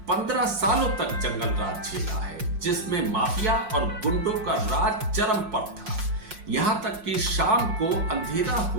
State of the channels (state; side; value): late; left; 5.6 ms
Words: 15 सालों तक जंगल राज झेला है, जिसमें माफिया और गुंडों का राज चरम पर था। यहाँ तक कि शाम को अंधेरा